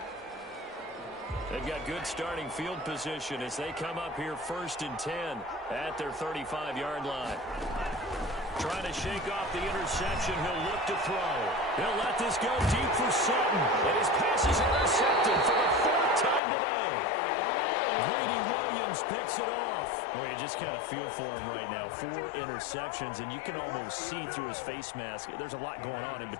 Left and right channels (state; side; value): drops out; right; at 16.4 s